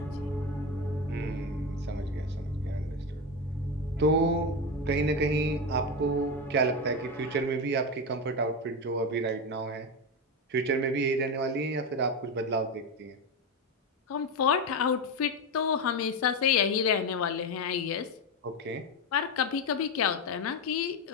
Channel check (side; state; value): both; normal; correlation 0.15